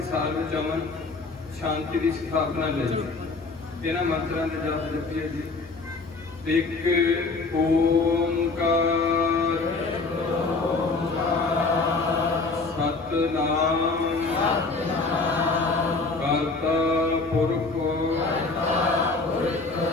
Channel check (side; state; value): right; quieter; 3.8 dB